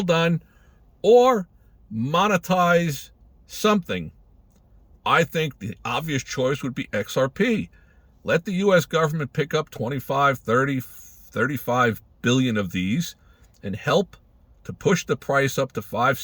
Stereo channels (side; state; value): both; identical; correlation 1.00